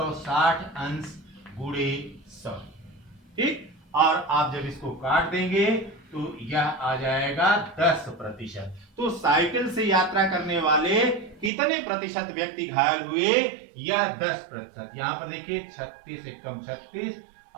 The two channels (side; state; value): left; drops out; at 11.5 s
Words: अंश गुणे 100। ठीक, और आप जब इसको काट देंगे तो यह आ जाएगा 10%। तो साइकिल से यात्रा करने वाले कितने प्रतिशत व्यक्ति घायल हुए? यह 10%। यहां पर देखिए 36 एकम 36